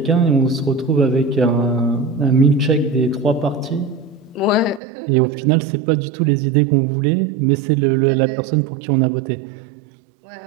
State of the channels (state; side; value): drops out; left; at 4.8 s